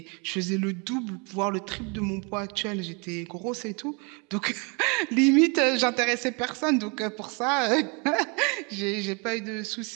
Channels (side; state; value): left; quieter; 32.4 dB